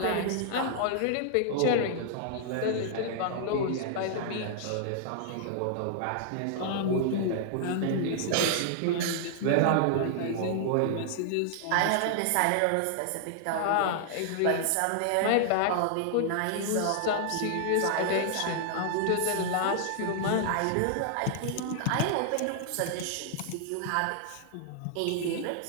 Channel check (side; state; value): both; different; correlation -0.01